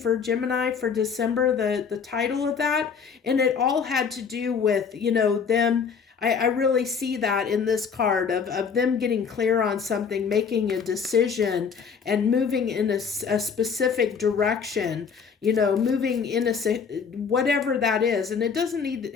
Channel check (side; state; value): right; quieter; 6.2 dB